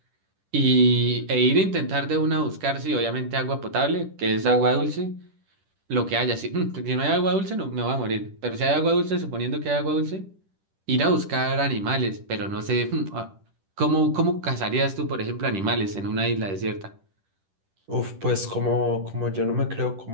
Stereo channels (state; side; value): late; left; 10 ms